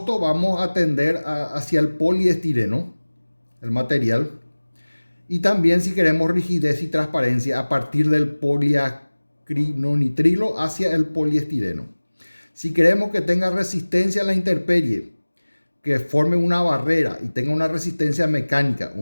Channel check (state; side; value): inverted; both; correlation -1.00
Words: vamos a tender hacia el poliestireno, el material. Y también si queremos rigidez y transparencia, a partir del poliacrinonitrilo hacia el poliestireno. Si queremos que tenga resistencia a la intemperie, que forme una barrera y tenga una resistencia mecánica,